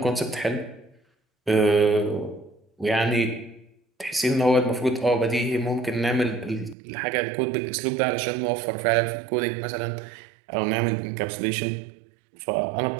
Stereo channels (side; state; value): left; drops out; at 6.8 s